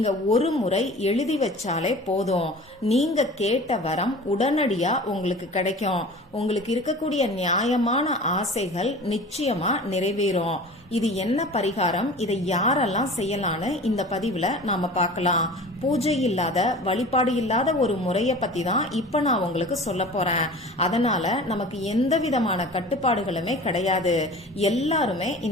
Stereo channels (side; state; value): both; normal; correlation 0.40